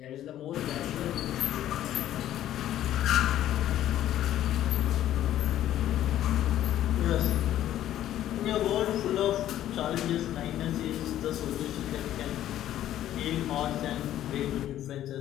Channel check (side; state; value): right; quieter; 12.4 dB